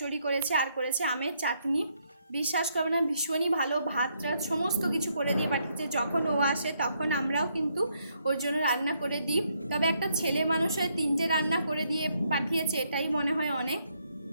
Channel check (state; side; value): inverted; both; correlation -0.74